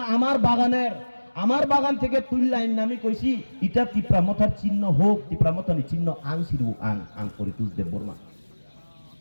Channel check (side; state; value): both; inverted; correlation -1.00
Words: আমার বাগানের আমার বাগান থেকে তুললাইন নামি কইছি এটা তিপ্রামতার চিহ্ন হোক তিপ্রামতার চিহ্ন আং সিরু আং করে তুলদেব বর্মা